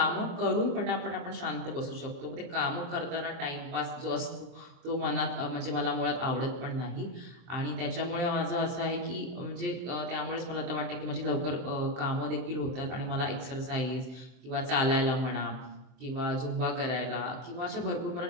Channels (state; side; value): late; left; 23 ms